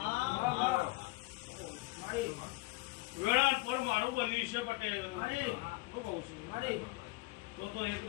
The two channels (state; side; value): quieter; right; 22.5 dB